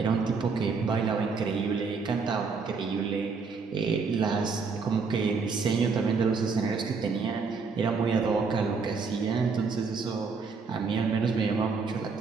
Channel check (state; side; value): quieter; left; 4.9 dB